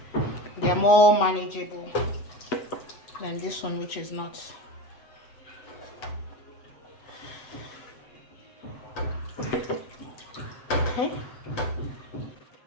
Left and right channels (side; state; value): right; late; 7.8 ms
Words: they're more manageable than this one, which is not. Okay.